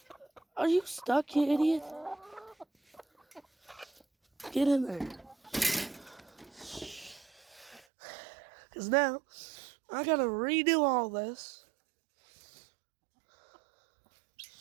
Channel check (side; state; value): left; drops out; at 7.8 s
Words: Are you stuck, you idiot? Get in there. Because now, I gotta redo all this.